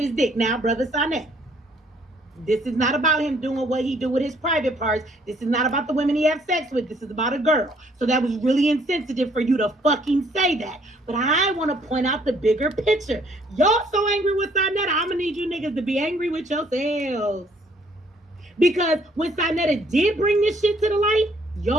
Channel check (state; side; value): normal; both; correlation 0.64